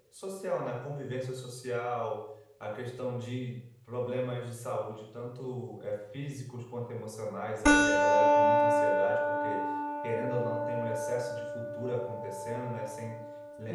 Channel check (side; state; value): both; identical; correlation 1.00